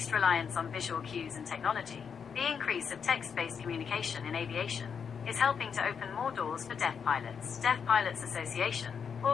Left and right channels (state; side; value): quieter; right; 6.7 dB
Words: reliance on visual cues and technology. The increase of text-based communication in aviation is helping to open more doors for deaf pilots. Deaf Pilots Association.